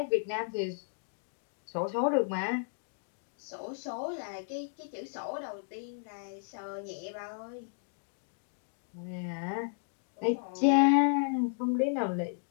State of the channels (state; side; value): silent; right; digital silence